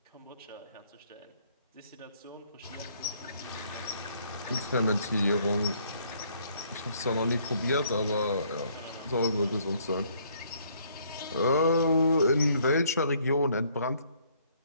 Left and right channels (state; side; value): inverted; both; correlation -0.65